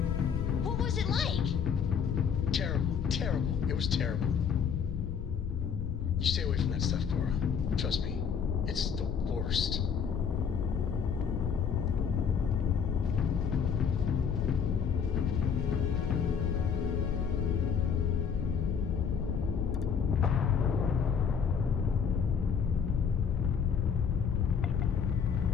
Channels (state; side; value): quieter; right; 6.9 dB